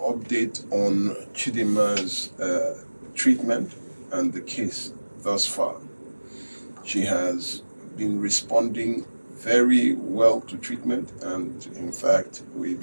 on Chidima's treatment and the case thus far. She has been responding very well to treatment, and in fact, we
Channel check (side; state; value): both; inverted; correlation -1.00